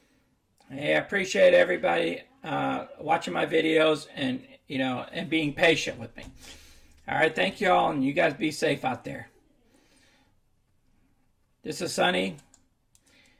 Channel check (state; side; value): identical; both; correlation 1.00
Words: Hey, I appreciate everybody watching my videos and being patient with me. All right, thank you all, and you guys be safe out there. This is Sonny,